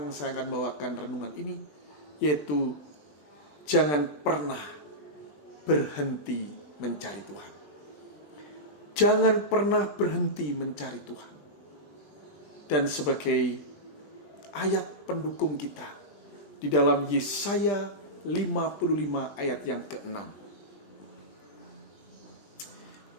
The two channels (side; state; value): right; late; 20 ms